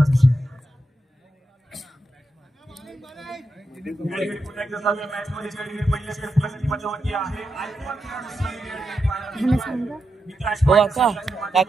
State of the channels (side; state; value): both; normal; correlation 0.86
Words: विषय. मॅच मध्ये पहिल्या षटकाची मजावती आहे. हो काका